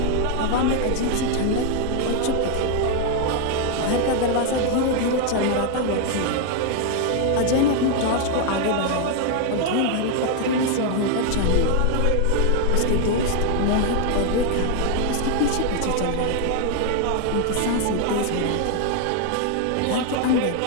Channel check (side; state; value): both; different; correlation 0.00